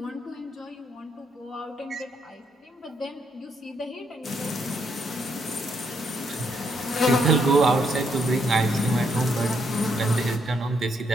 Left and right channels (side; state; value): both; normal; correlation 0.75